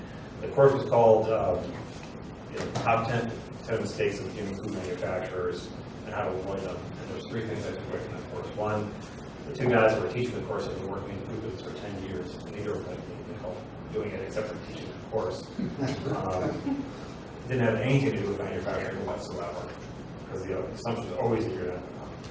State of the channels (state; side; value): identical; both; correlation 1.00